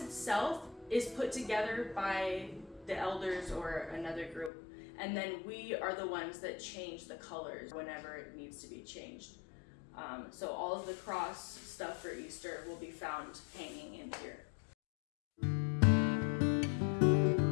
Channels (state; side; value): drops out; right; at 4.5 s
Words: itself is put together by the elders or another group, and then we are the ones that change the colors whenever it needs to be changed. So all of the cross stuff for Easter will be found hanging in here.